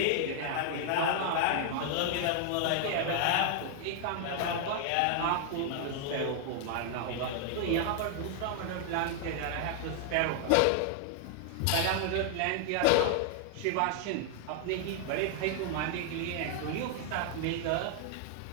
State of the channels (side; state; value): both; different; correlation 0.00